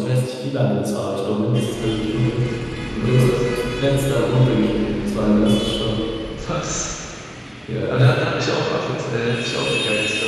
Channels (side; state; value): both; identical; correlation 1.00